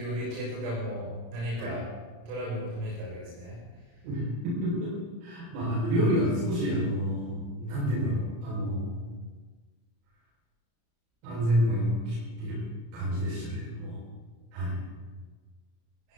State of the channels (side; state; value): left; late; 35 ms